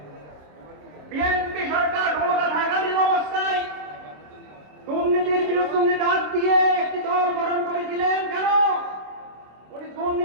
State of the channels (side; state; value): left; late; 26 ms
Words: বিএনপি সরকার ক্ষমতা থাকালীন অবস্থায় দুর্নীতির বিরুদ্ধে উনি ডাক দিয়ে একটি দল গঠন করেছিলেন। কেন? উনি